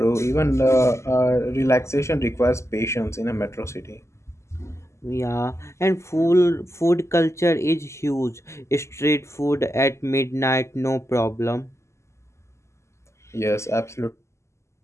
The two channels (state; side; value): late; right; 0.13 ms